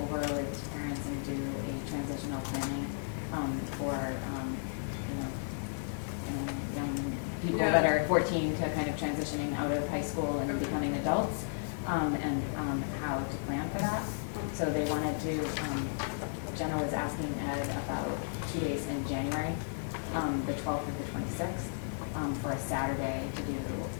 over with parents and do a transitional planning for, young people that are 14 to kind of transitioning out of high school and becoming adults, and how to plan for that. So they wanted to, Jenna was asking Ed about 2 days in January, the 12th or the 26th, for a Saturday to do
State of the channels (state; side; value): silent; right; digital silence